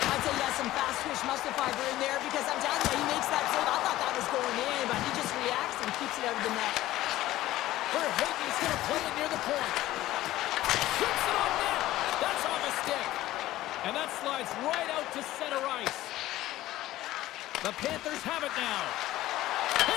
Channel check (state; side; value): quieter; right; 15.6 dB